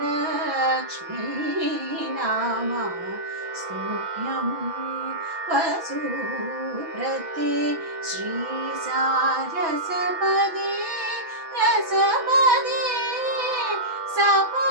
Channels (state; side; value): late; left; 6.1 ms